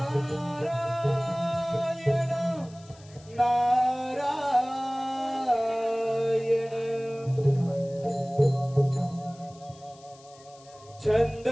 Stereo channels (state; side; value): noise; left; hiss, 25 dB below the sound